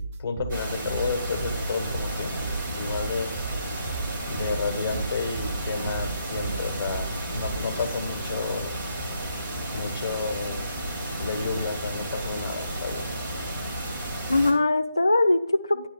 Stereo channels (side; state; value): both; inverted; correlation -0.79